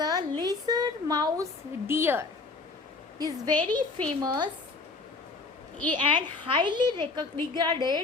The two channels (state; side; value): quieter; right; 3.8 dB